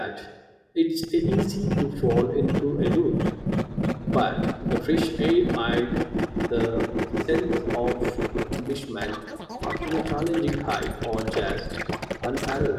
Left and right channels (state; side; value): identical; both; correlation 1.00